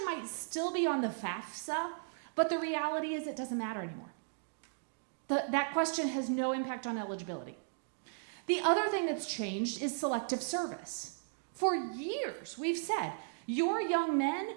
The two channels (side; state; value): left; silent; digital silence